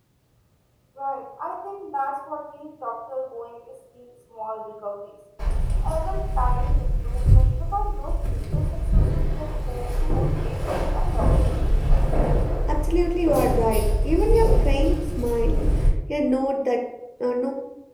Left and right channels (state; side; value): identical; both; correlation 1.00